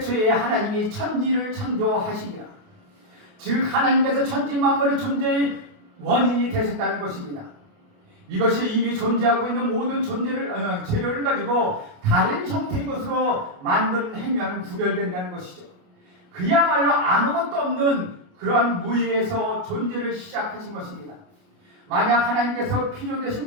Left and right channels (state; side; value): late; left; 28 ms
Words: 하나님이 천지를 창조하시니라. 즉 하나님께서 천지 만물의 존재의 원인이 되셨다는 것입니다. 이것이 이미 존재하고 있는 모든 재료를 가지고 다른 형태의 것으로 만든 행위와는 구별된다는 것이죠. 그야말로 아무것도 없는 그러한 무의에서 존재를 시작하신 것입니다. 만약 하나님께서